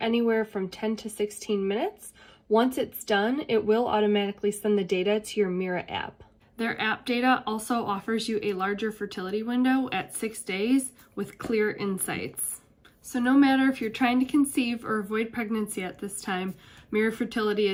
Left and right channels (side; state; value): both; identical; correlation 1.00